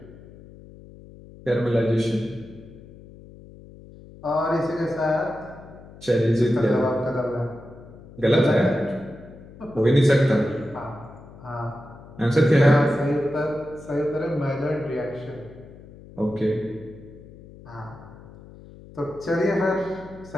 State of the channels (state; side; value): noise; left; hum, 19 dB below the sound